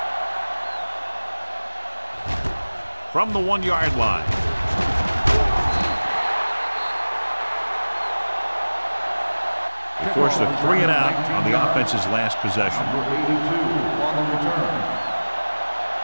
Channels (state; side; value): inverted; both; correlation -1.00